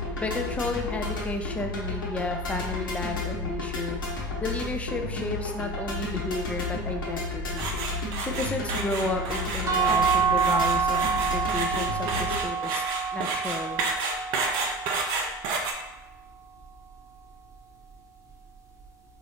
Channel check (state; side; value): normal; both; correlation 0.34